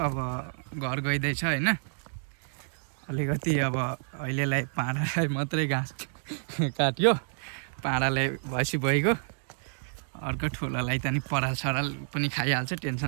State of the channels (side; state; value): left; silent; digital silence